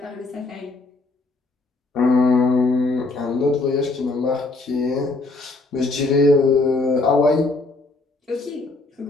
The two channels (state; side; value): quieter; right; 3.3 dB